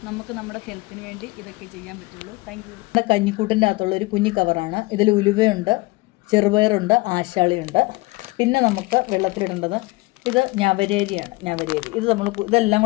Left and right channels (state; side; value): quieter; right; 23.0 dB